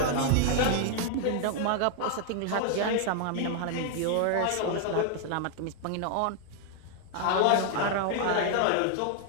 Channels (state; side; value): different; both; correlation 0.00